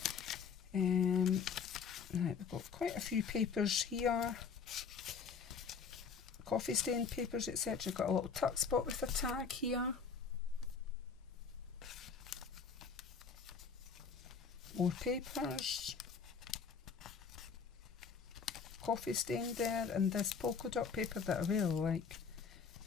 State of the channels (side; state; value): right; quieter; 5.9 dB